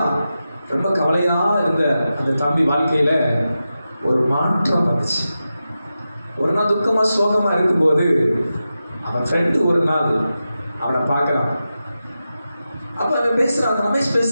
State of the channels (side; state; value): both; inverted; correlation -0.91